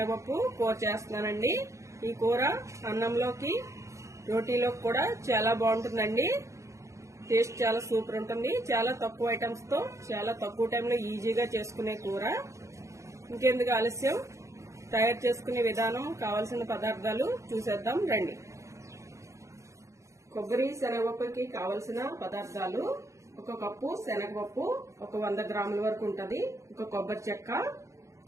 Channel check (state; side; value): late; left; 0.15 ms